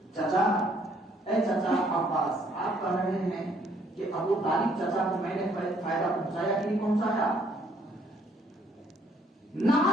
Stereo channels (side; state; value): both; normal; correlation 0.65